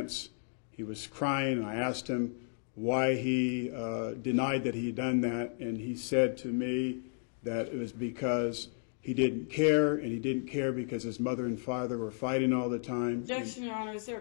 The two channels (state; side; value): silent; right; 56 dB below the other